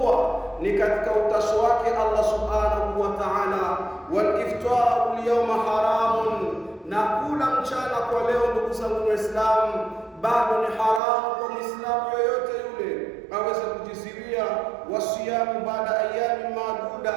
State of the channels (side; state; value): left; drops out; at 11.0 s